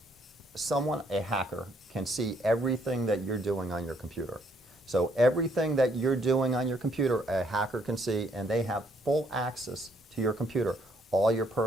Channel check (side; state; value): both; normal; correlation 0.69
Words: someone, a hacker, can see everything that you're doing on your computer. So everything that you're doing on your computer, a hacker can see, and they have full access to your computer, all your